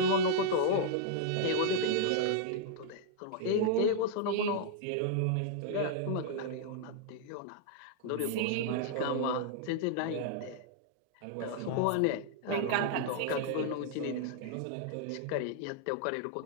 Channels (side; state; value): both; different; correlation -0.01